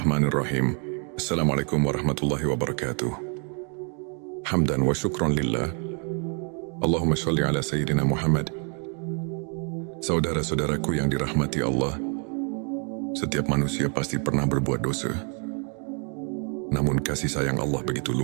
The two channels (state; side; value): quieter; left; 40.0 dB